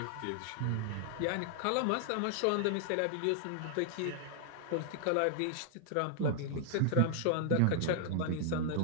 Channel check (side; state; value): both; different; correlation 0.00